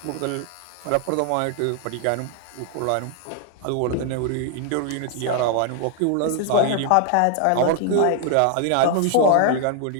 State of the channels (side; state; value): both; different; correlation 0.00